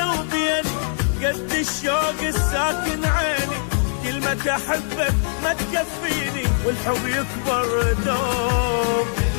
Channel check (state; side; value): silent; right; digital silence